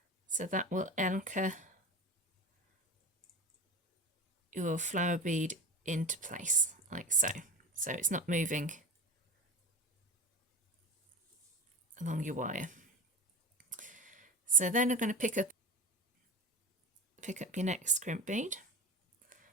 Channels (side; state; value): both; normal; correlation 0.31